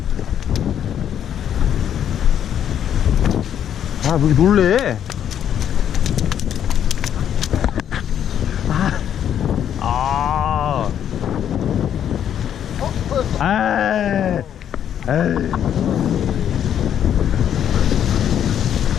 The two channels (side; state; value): right; quieter; 9.6 dB